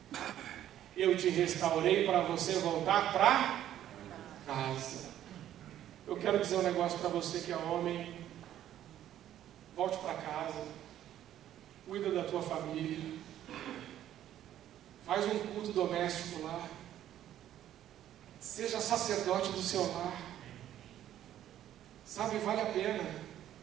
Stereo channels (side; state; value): left; quieter; 11.7 dB